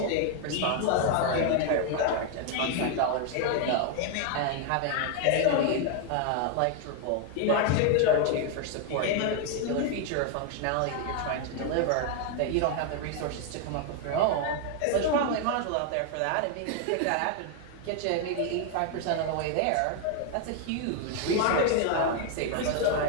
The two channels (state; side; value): different; both; correlation 0.00